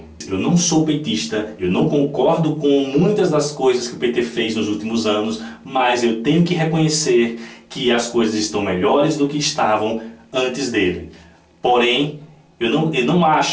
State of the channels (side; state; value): both; identical; correlation 1.00